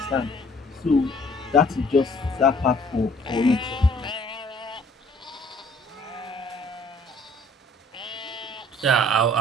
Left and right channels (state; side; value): normal; both; correlation 0.57